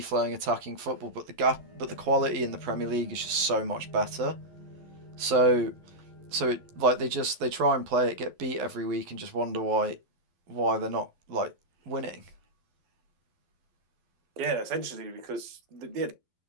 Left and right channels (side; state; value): left; late; 12 ms